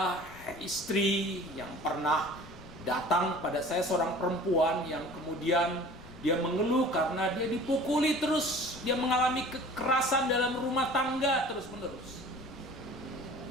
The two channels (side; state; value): left; noise; rumble, 19 dB below the sound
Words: istri yang pernah datang pada saya, seorang perempuan yang kemudian dia mengeluh karena dia dipukuli terus. Dia mengalami kekerasan dalam rumah tangga terus-menerus.